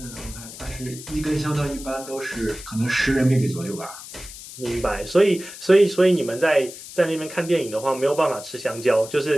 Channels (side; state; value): left; noise; hiss, 14 dB below the sound